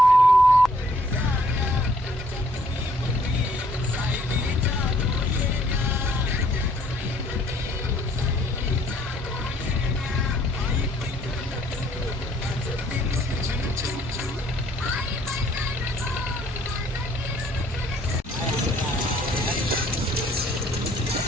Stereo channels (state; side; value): normal; both; correlation 0.63